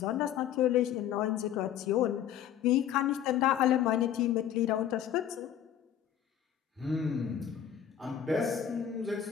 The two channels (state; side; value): quieter; right; 9.9 dB